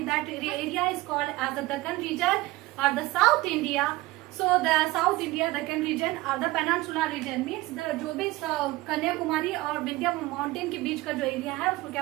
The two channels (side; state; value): left; quieter; 19.4 dB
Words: that area is called as the Deccan region or the South India. So the South India, Deccan region or the Peninsula region means the जो भी कन्याकुमारी और Vindhya mountain के बीच का जो area है उसको